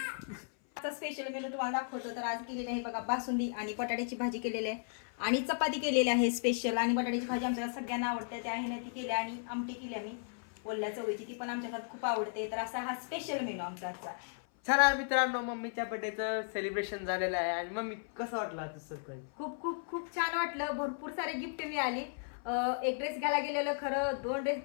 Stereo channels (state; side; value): silent; right; 54 dB below the other